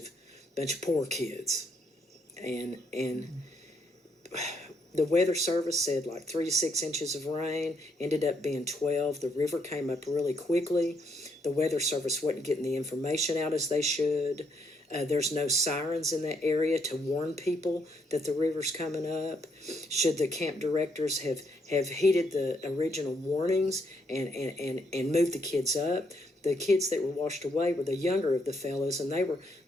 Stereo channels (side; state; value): both; normal; correlation 0.74